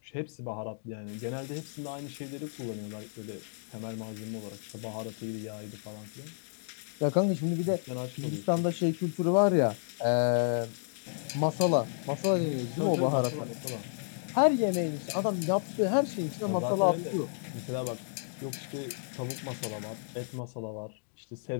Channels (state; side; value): silent; right; digital silence